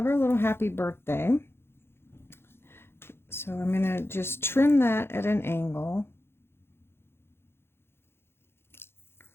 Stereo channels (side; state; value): right; late; 0.11 ms